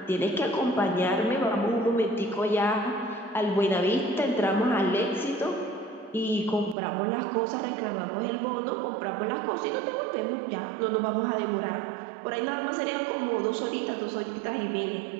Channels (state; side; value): drops out; left; at 6.8 s